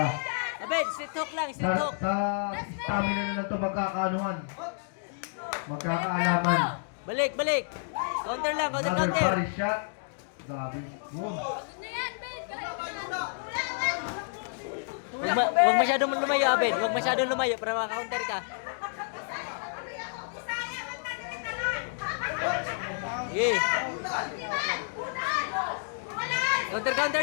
Abed, sitok lang, sitok. Sa stamina na lang ito magkakaanuhan. Magkakaalaman. Balik. Counter lang, Another counter. body shot. Grabe. Boom. Pagod na yan, bed! Kaya mo yan! Wag masyadong lumayo, Abed. Wag masyadong lumayo para maka-counter ka. Sige. Counter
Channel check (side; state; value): right; silent; digital silence